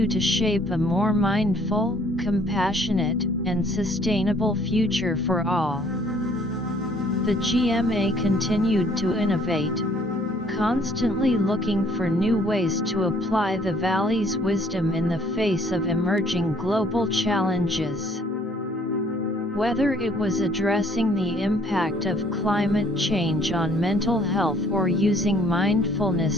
to shape a more mindful, compassionate, and sustainable future for all. The GMA continued to innovate, constantly looking for new ways to apply the Valley's wisdom in the face of emerging global challenges. Whether it was addressing the impact of climate change on mental health or using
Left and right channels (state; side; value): normal; both; correlation 0.60